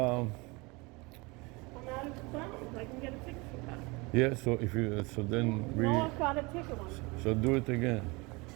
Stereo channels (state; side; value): quieter; left; 25.9 dB